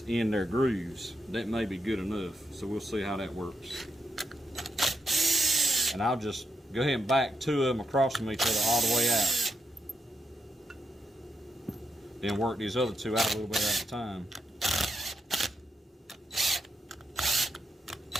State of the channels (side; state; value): both; normal; correlation 0.84